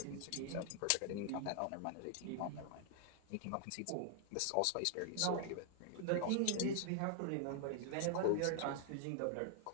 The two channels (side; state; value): both; different; correlation 0.00